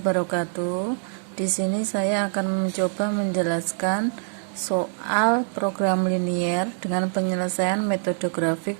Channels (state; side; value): silent; left; digital silence